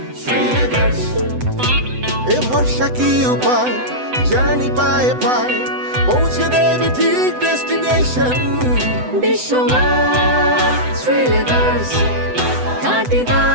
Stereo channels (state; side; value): late; left; 7.9 ms